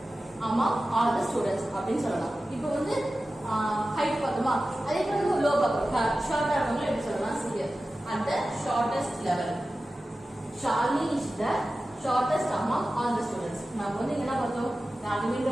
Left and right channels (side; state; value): both; normal; correlation 0.95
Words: among all the students அப்படின்னு சொல்லலாம். இப்போ வந்து ஹைட் பார்த்தோமா, அதே போல லோ பார்ப்போம், ஷார்ட்டா இருக்கவங்க எப்படி சொல்லலாம்? Serious. At the shortest level, Shalini is the shortest among all the students. நம்ம வந்து என்ன பார்த்தோம்?